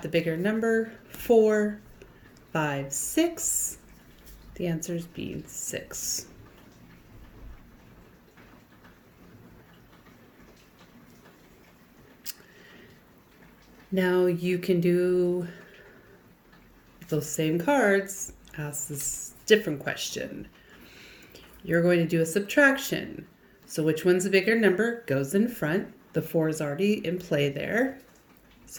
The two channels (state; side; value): identical; both; correlation 1.00